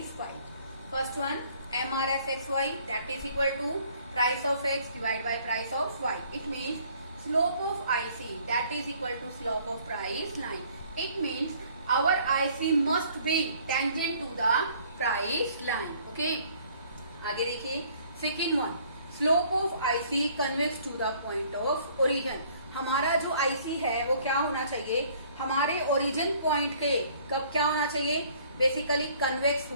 First one, MRS XY that is equal to price of X divided by price of Y. It means slope of IC that is equal to slope of price line. It means our IC must be tangent to the price line. Okay, आगे देखिए. Second one, slope of IC convex to the point of origin. हमारा जो IC है वो क्या होना चाहिए? हमारे ओरिजिन पॉइंट के कब क्या होना चाहिए? बेसिकली कन्वेक्स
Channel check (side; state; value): both; inverted; correlation -0.58